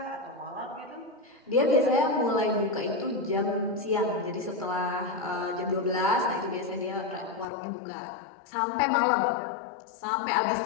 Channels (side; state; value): right; drops out; at 7.5 s